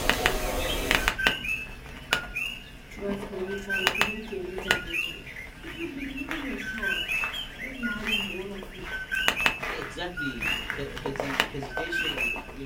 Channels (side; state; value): both; identical; correlation 1.00